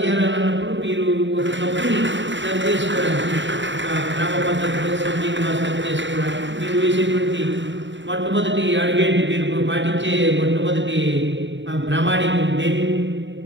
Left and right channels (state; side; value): late; left; 0.54 ms